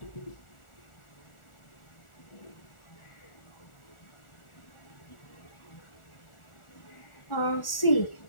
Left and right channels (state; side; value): late; right; 1.4 ms